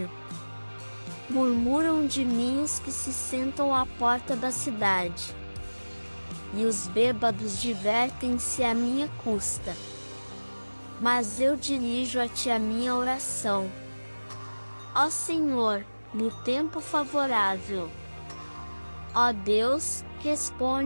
Murmuram de mim os que se sentam à porta da cidade, e os bêbados divertem-se à minha custa. Mas eu dirijo a ti a minha oração. Ó Senhor, no tempo favorável. Ó Deus,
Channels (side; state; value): both; inverted; correlation -1.00